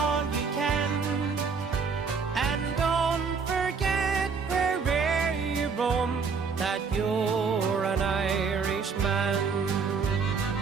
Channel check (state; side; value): quieter; left; 5.4 dB